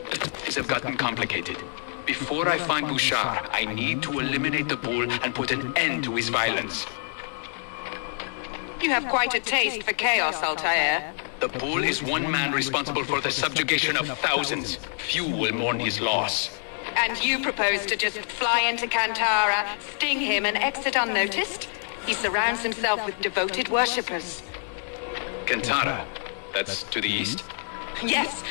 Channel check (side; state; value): right; silent; 58 dB below the other